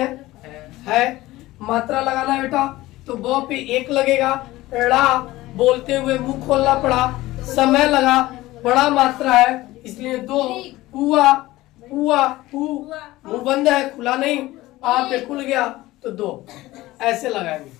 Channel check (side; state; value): right; quieter; 17.7 dB